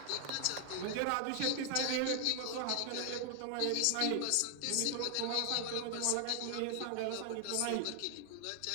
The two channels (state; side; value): different; both; correlation 0.00